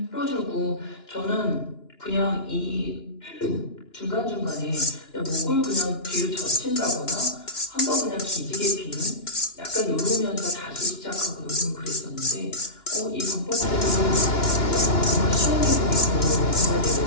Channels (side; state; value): right; late; 2.9 ms